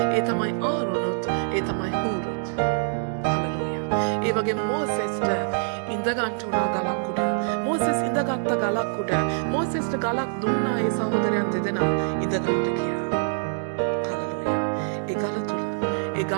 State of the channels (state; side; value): silent; left; digital silence